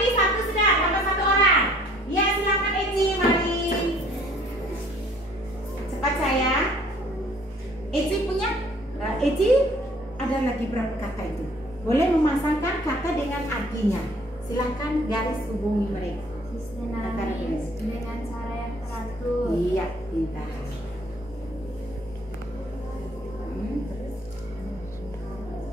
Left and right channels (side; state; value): both; normal; correlation 0.58